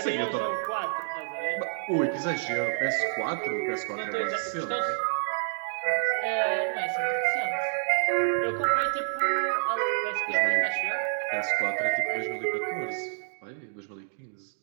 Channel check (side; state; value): left; silent; digital silence